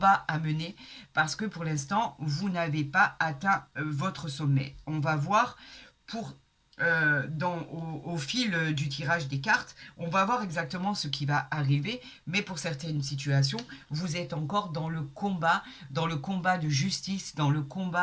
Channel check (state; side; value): identical; both; correlation 1.00